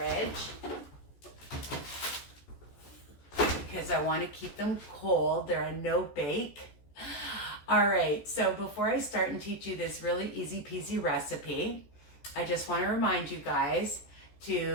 because I want to keep them cold. They're a no bake. All right, so before I start and teach you this really easy peasy recipe, I just want to remind you guys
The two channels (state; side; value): late; right; 14 ms